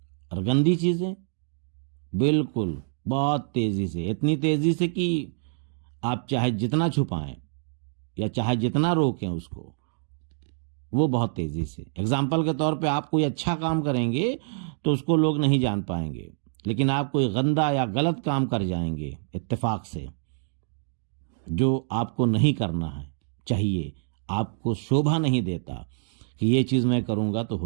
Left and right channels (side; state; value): left; silent; digital silence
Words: और गंदी चीज़ें बिल्कुल बहुत तेज़ी से, इतनी तेज़ी से कि आप चाहे जितना छुपाएं या चाहे जितना रोकें उसको, वो बहुत तेज़ी से। एग्जाम्पल के तौर पे आप कोई अच्छा काम करेंगे तो उसको लोग नहीं जान पाएंगे, लेकिन आप कोई गंदा या गलत काम कर जाएंगे इत्तेफाक से, जो आपको नहीं करना है चाहिए, आपको शोभा नहीं देता कि ये चीज़ मैं करूँगा तो